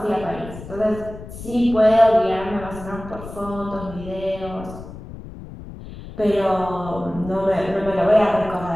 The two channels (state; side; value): noise; left; rumble, 13 dB below the sound